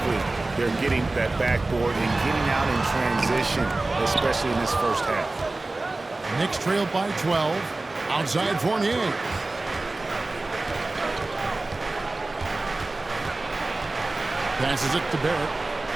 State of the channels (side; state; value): left; quieter; 3.1 dB